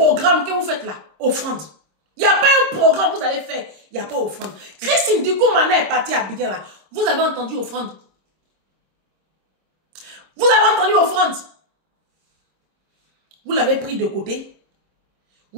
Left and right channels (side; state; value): left; late; 26 ms